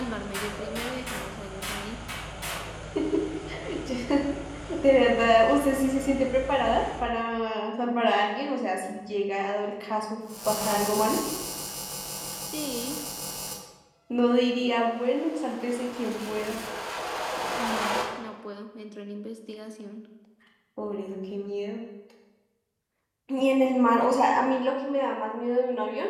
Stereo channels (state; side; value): identical; both; correlation 1.00